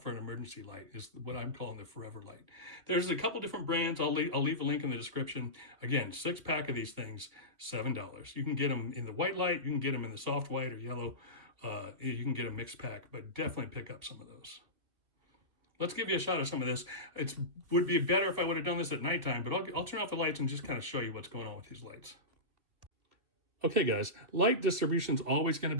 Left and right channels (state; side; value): late; left; 2.4 ms